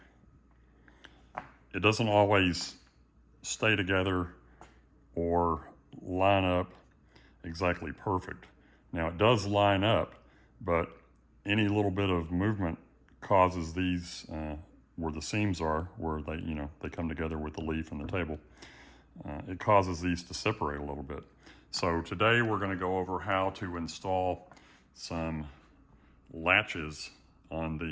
it doesn't always stay together or line up exactly perfect. Now it does line up, but any little bit of movement causes these, where the seams are, where they come together with the leaf and the table, it causes these to separate a little bit. So today we're going to go over how to install some latches on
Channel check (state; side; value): identical; both; correlation 1.00